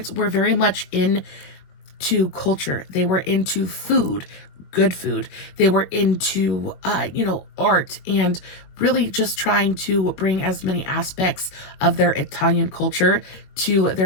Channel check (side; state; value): right; late; 22 ms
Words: were very much into culture. They were into food, good food. They were into, art, and really just trying to bring as many aspects of their Italian culture to